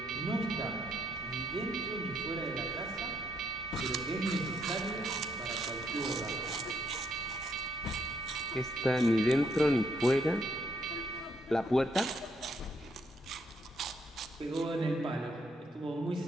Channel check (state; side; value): normal; both; correlation 0.73